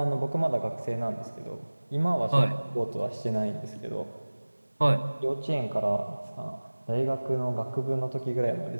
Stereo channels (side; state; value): both; inverted; correlation -1.00